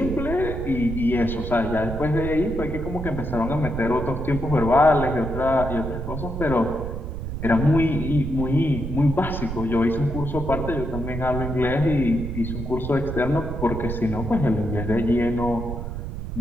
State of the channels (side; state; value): right; noise; rumble, 6 dB below the sound